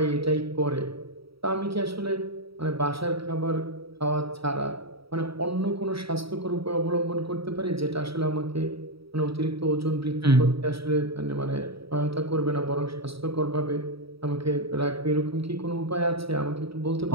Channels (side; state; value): left; late; 0.76 ms